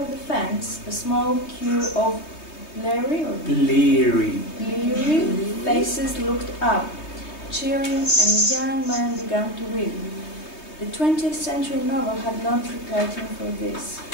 the fence, a small queue of bleary faces looked up, cheering, and the young man began to weep. The 20th century novel had not prepared him for this.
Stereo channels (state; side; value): late; right; 3.2 ms